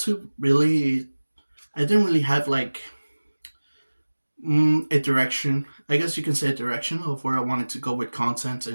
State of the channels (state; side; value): inverted; both; correlation -1.00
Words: really, I didn't really have like a direction. I guess you can say a direction of where I wanted to go with content